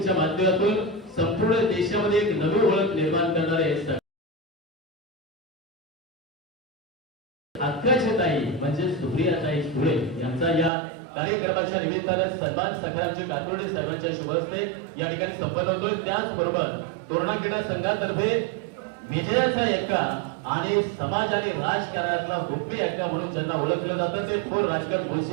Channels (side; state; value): left; drops out; at 10.7 s